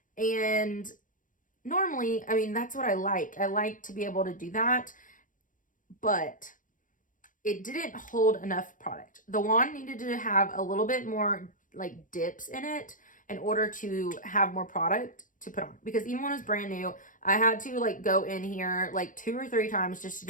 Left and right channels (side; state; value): right; late; 0.38 ms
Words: and normally, I mean, that's what I like. I like to be able to do that, but it didn't hold enough product. The wand needed to have a little bit more like dips in it in order to have more product to put on, because even when it was brand new, I had to like go in here like 2 or 3 times just to